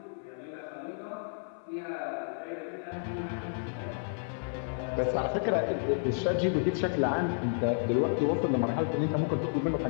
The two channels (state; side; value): silent; right; 57 dB below the other